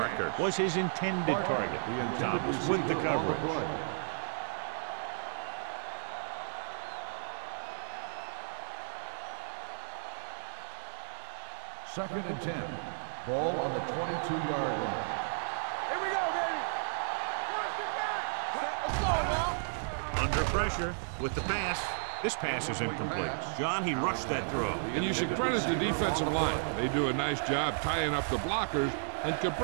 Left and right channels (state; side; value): silent; left; 55 dB below the other